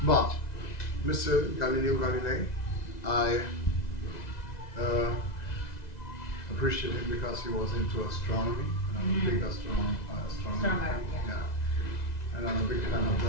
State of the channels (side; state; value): right; late; 2.0 ms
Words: But Mr. Galileo Galilei, I appreciate him because he was into astronomy. And I'm a big astronomer. Astronomer, yeah. And I'm a big fan of